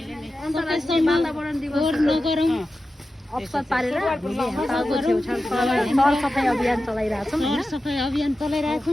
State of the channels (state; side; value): normal; both; correlation 0.93